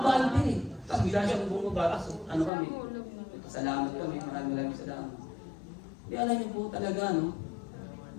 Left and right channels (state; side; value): drops out; right; at 2.5 s